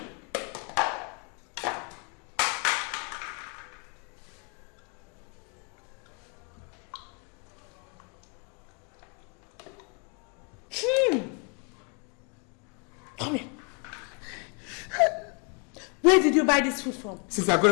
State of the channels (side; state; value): right; quieter; 36.2 dB